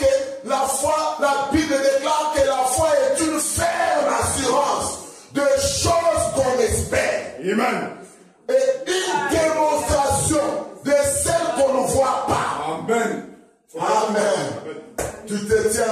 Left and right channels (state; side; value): identical; both; correlation 1.00